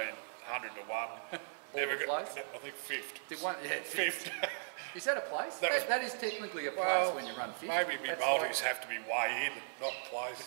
to 1. Never got. I think 5th. Did one? Yeah, 5th. Is that a place? That is technically a place when you run 5th. Maybe me multis have to be way in, not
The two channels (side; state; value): left; silent; digital silence